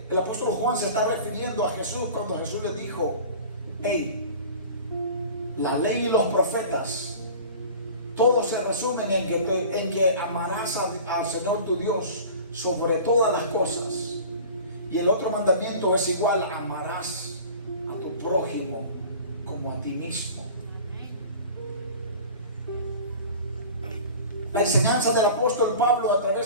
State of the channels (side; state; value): both; inverted; correlation -0.40